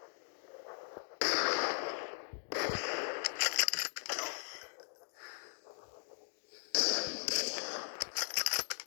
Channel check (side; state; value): right; silent; digital silence